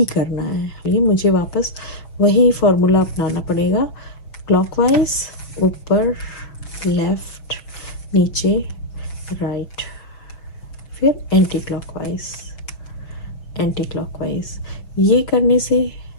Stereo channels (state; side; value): late; right; 6.1 ms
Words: करना है, ये मुझे वापस वही फॉर्मूला अपनाना पड़ेगा, क्लॉकवाइज ऊपर लेफ्ट नीचे राइट फिर एंटी क्लॉकवाइज। ये करने से